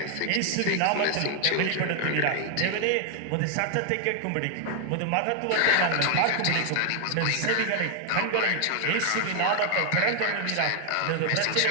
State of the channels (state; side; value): different; both; correlation 0.00